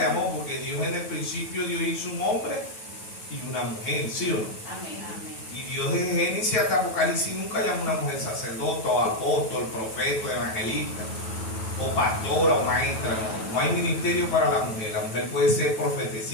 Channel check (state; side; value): late; right; 9.3 ms